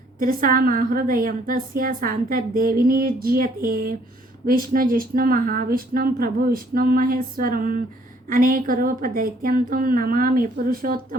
త్రిసామా హృదయం తస్య శాంతర్దేవి నిర్జీయతే. విష్ణుజిష్ణు మహావిష్ణుం ప్రభు విష్ణుం మహేశ్వరం అనేకరూపదైత్యంతం నమామి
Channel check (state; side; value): normal; both; correlation 0.63